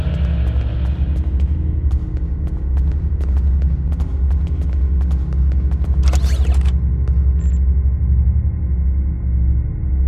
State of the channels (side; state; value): both; identical; correlation 1.00